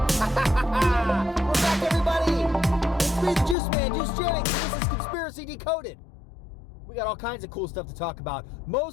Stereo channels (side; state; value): right; drops out; at 3.6 s